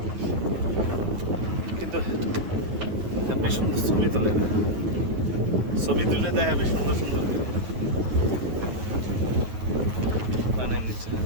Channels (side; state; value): left; late; 9.3 ms